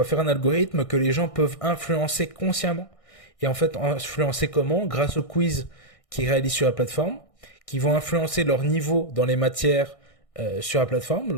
faire un algorithme que les gens peuvent influencer consciemment. Et en fait, influencer comment? Grâce aux quiz qu'ils réalisent sur la plateforme, qui vont influencer leur niveau dans les matières sur la plateforme.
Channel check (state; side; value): late; right; 1.6 ms